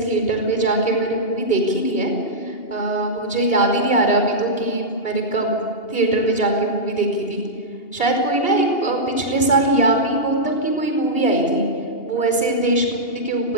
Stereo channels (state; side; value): late; right; 2.8 ms